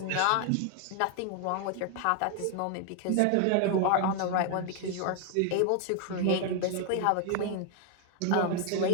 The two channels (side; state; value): both; different; correlation 0.01